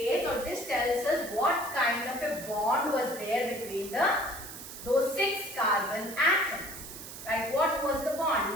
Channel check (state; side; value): noise; right; hiss, 12 dB below the sound